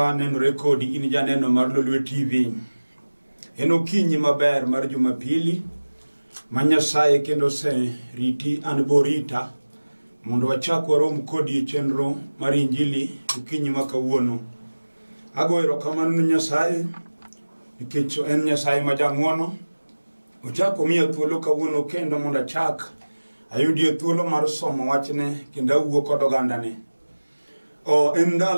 nenore kodi in janeno mar Lolwe TV. En okinyi maber mar Jumapili ma Nyasaye kendo se riti an borita mondo wachak warom kodi e chenro mar Injili okinyi ma kawuono. Ago erokamano Nyasaye nikech en Nyasaye ma jang'wono. Ochako miya thuolo kawuono kendo mondo achak ayudie thuolo mar somo wachne kendo awuo kod ogandane. En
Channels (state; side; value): inverted; both; correlation -1.00